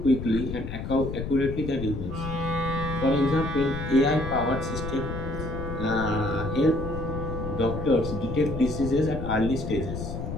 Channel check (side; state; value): left; noise; rumble, 6 dB below the sound